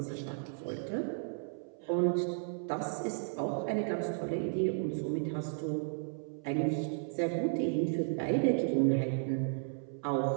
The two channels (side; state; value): left; silent; 55 dB below the other